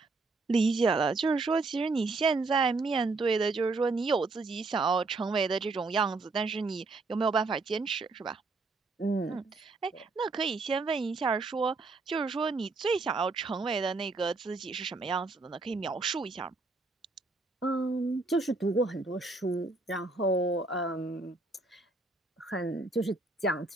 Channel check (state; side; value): quieter; left; 3.6 dB